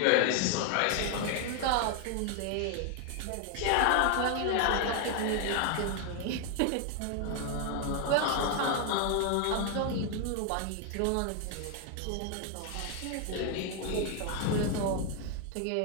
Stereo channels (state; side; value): different; both; correlation 0.00